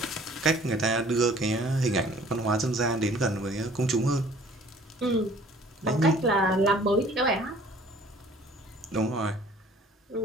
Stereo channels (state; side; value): normal; both; correlation 0.53